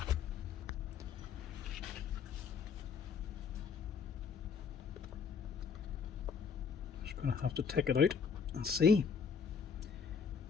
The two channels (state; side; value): quieter; right; 6.2 dB